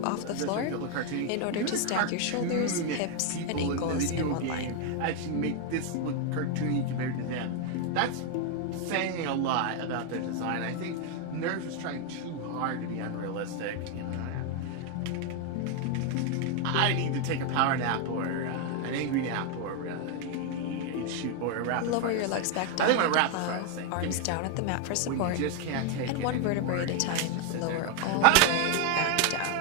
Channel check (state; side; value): different; both; correlation 0.00